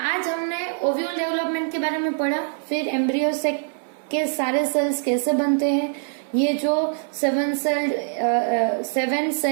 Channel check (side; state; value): left; silent; 60 dB below the other